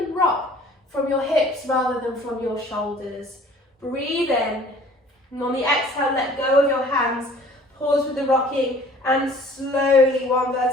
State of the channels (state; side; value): normal; both; correlation 0.51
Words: rock from your hips rather than from your shoulders. Breathe in, and on the exhale, let go of your hands. Pause with the rocking and slowly, one